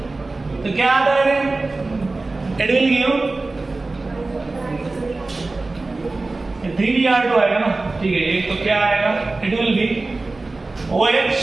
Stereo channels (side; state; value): left; quieter; 3.3 dB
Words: तो क्या आता है, इट विल गिव 3Br2 आएगा ना, ठीक है। एक तो क्या आएगा, it will B OH